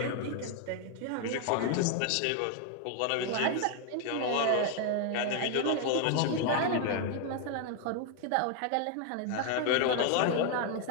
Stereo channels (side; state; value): both; different; correlation 0.00